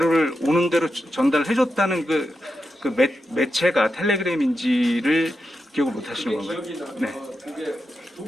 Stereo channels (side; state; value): both; normal; correlation 0.87